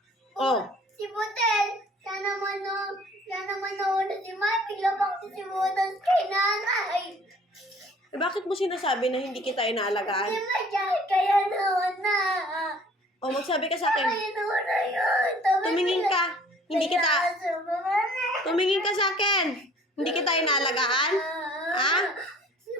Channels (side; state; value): both; normal; correlation 0.53